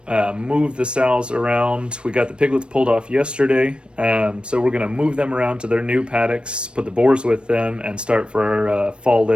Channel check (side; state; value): left; late; 0.057 ms